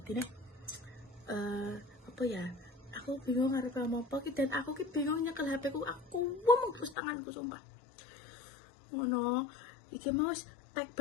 nih apa ya? Aku bingung harus ngomong apa, dan aku bingung nyekel HP ku, aku ngomong terus tanganku sumpah. Ngono, iki mau tag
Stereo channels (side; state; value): right; drops out; at 7.0 s